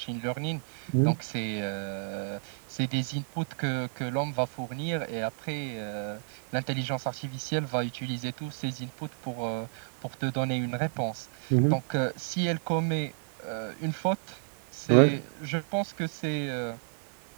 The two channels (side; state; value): left; silent; digital silence